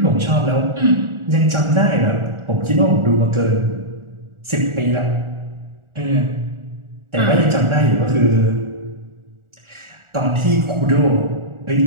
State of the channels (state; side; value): late; left; 1.4 ms